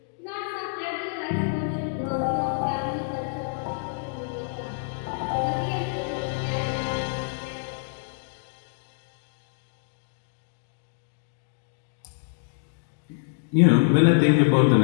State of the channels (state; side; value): silent; right; digital silence